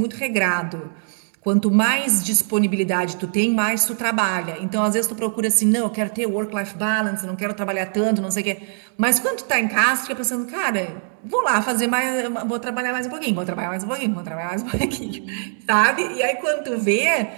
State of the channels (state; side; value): silent; left; digital silence